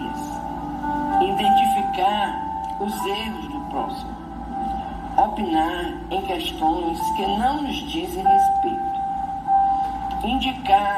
identificar os erros do próximo, opinar em questões que não nos dizem respeito,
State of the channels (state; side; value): identical; both; correlation 1.00